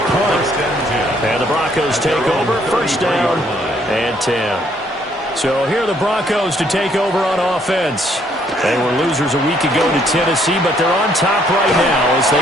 punt. And the Broncos take over, first down and 10. So here are the Broncos to take over on offense. They were losers a week ago to Tennessee, but they're on top right now as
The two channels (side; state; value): both; normal; correlation 0.67